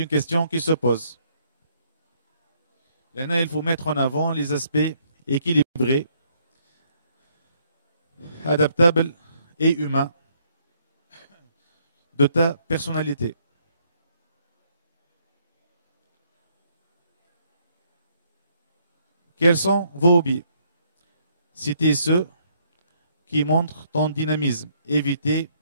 question qui se pose. Là, il faut mettre en avant les aspects équilibrés, adaptables et humains de ta personnalité. Quels sont vos hobbies? Citez ceux qui montrent ton dynamisme. Évitez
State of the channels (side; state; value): both; inverted; correlation -0.69